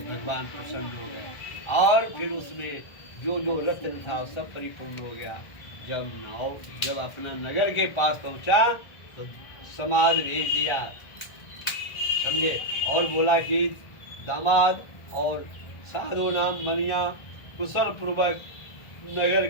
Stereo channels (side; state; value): right; late; 1.5 ms